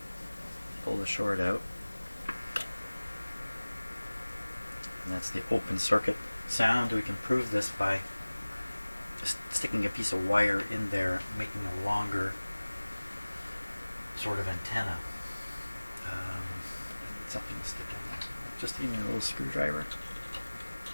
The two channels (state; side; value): inverted; both; correlation -1.00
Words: pull the short out, and that's the open circuit sound. We can prove this by just sticking a piece of wire in there, making a longer sort of antenna. I need something to stick in there. Just give me a little screwdriver.